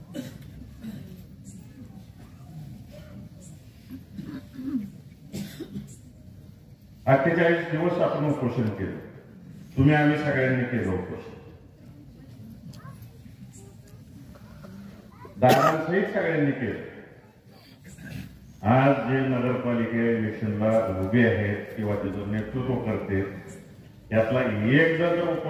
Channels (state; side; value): identical; both; correlation 1.00